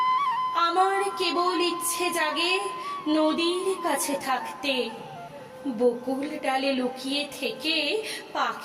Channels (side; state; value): both; identical; correlation 1.00